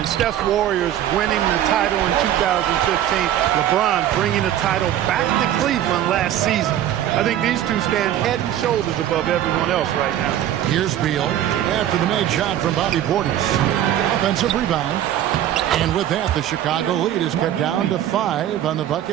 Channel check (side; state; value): left; quieter; 11.6 dB